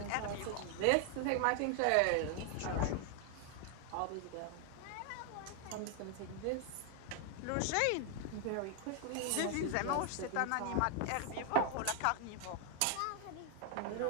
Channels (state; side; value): different; both; correlation 0.00